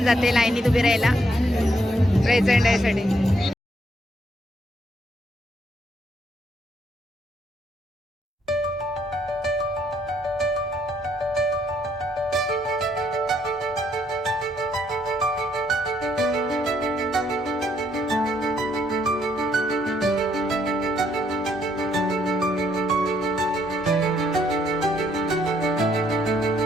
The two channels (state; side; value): normal; both; correlation 0.71